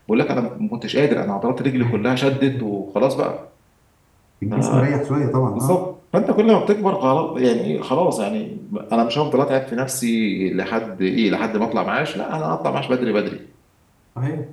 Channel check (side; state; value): both; identical; correlation 1.00